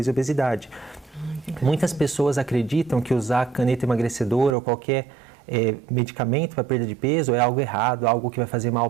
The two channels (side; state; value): left; drops out; at 4.5 s